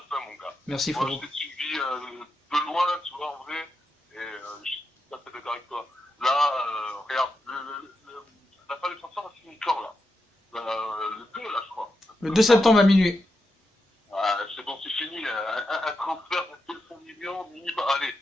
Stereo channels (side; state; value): both; normal; correlation 0.87